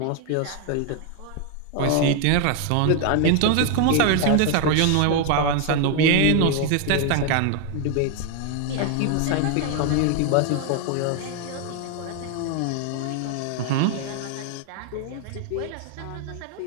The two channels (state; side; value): different; both; correlation 0.01